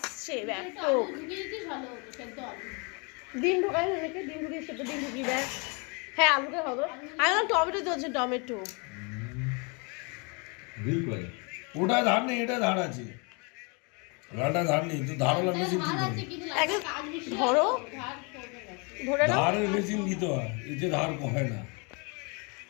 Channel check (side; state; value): right; quieter; 32.6 dB